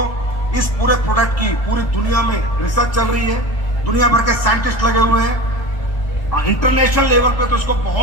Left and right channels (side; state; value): right; late; 1.3 ms